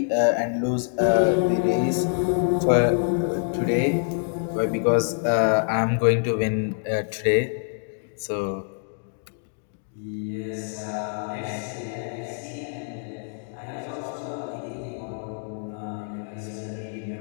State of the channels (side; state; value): right; silent; digital silence